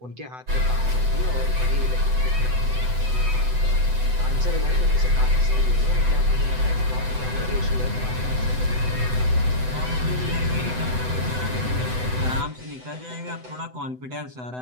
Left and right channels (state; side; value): late; left; 7.9 ms